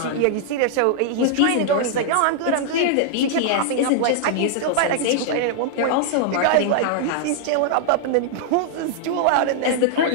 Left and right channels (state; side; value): different; both; correlation -0.01